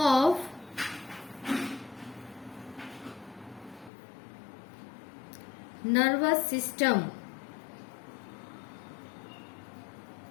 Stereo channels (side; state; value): right; drops out; at 3.9 s